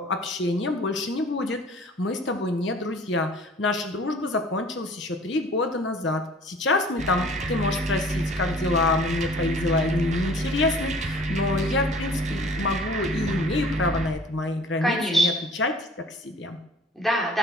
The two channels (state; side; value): normal; both; correlation 0.49